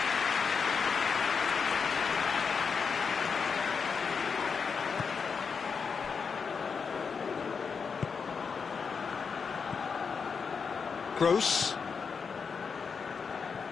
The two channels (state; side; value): quieter; right; 5.7 dB